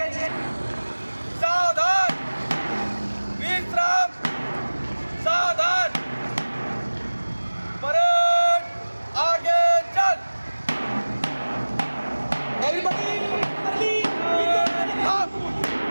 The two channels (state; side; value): inverted; both; correlation -1.00